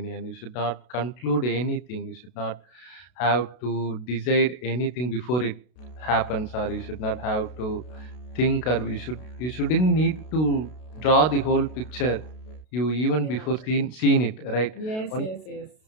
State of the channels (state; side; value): late; right; 32 ms